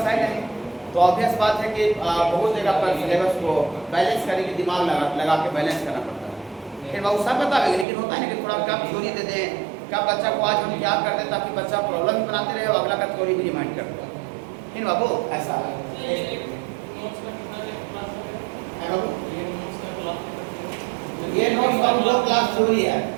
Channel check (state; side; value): drops out; left; at 7.9 s